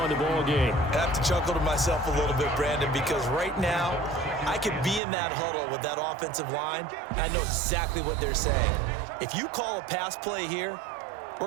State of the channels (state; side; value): drops out; left; at 5.0 s